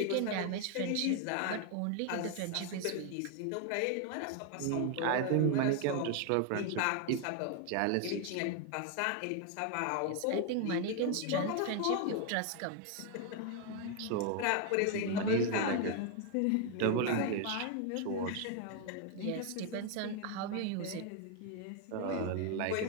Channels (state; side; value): different; both; correlation 0.01